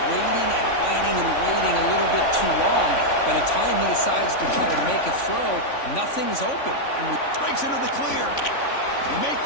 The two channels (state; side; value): late; right; 3.5 ms